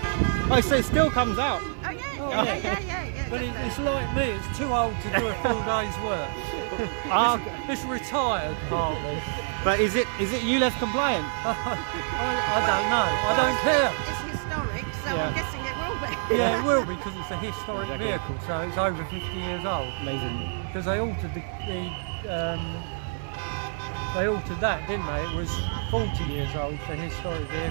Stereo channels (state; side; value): silent; left; digital silence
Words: Oh, so it still comes out. Oh yeah. But it's like me, it's too old to do a full day's work. It's retired partly. But is it ULEZ compliant? I don't know. I don't care. It's historic, so I'm guessing it will be. Yeah, it will be because it's a historic vehicle, so it's over 50 years old. Amazing. Because they altered they altered that, didn't they? It was 40 years old for historic